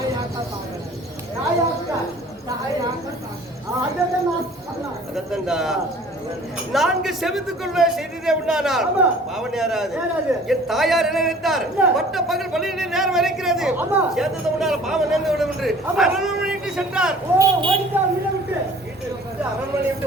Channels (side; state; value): both; normal; correlation 0.49